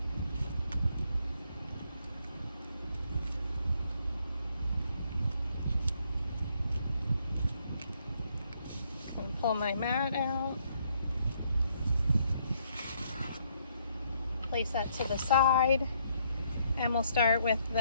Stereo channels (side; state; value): both; inverted; correlation -0.70